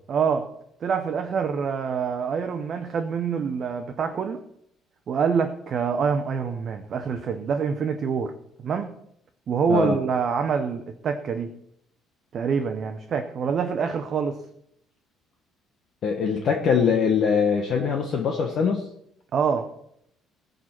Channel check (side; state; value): both; normal; correlation 0.64